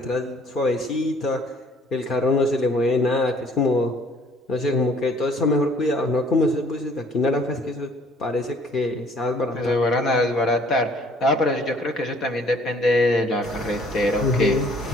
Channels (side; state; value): both; normal; correlation 0.58